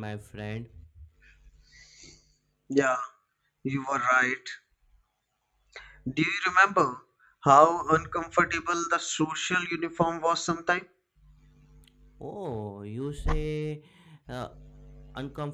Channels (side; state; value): both; identical; correlation 1.00